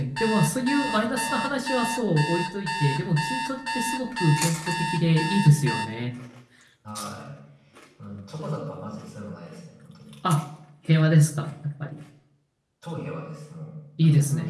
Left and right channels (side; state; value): both; identical; correlation 1.00